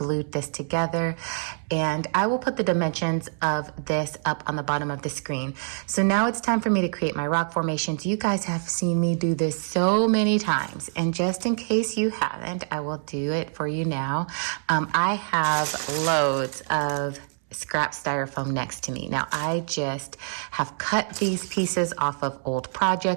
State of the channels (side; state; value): left; silent; 61 dB below the other